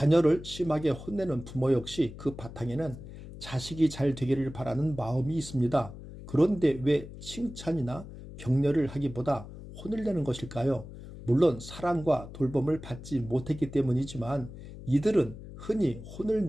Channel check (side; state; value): left; noise; hum, 14 dB below the sound